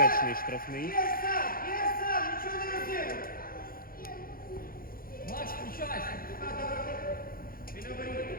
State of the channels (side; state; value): right; late; 0.42 ms